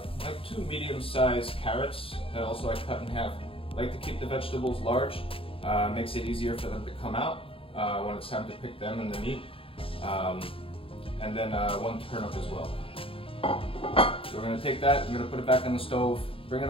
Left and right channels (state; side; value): late; right; 0.27 ms